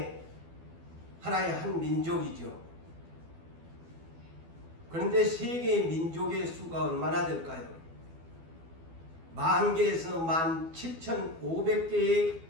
하나의 한 민족이죠. 그런데 세계의 민족의 수가 얼마나 될까요? 10,000개에서 17,500개의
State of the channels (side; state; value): left; late; 12 ms